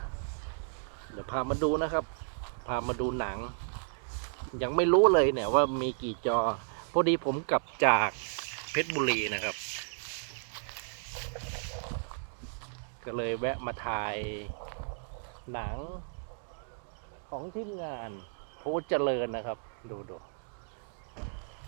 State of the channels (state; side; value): silent; left; digital silence